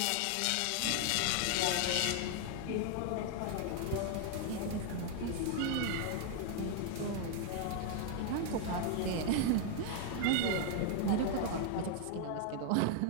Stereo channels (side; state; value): both; different; correlation 0.00